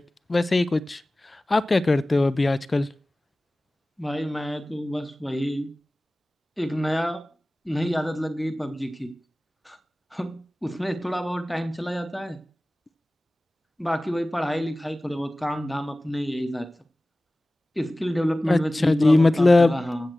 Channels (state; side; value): normal; both; correlation 0.97